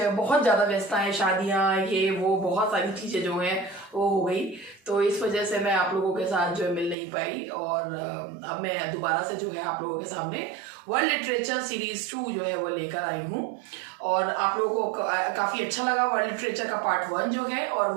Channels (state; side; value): drops out; left; at 7.0 s